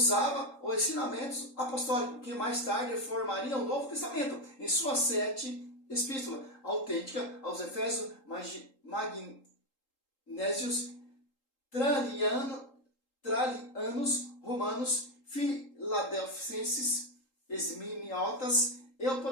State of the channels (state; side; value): late; right; 3.8 ms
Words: os ensinamentos apostólicos, que mais tarde formariam o Novo Testamento, em suas 7 epístolas autênticas aos Efésios, Magnésios, Tralianos, Romanos, Filadelfenses, Esminiotas e o